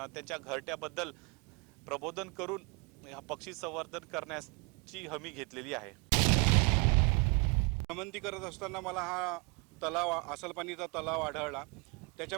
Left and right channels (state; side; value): quieter; left; 31.5 dB